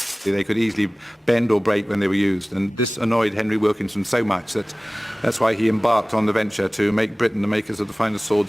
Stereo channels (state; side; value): normal; both; correlation 0.98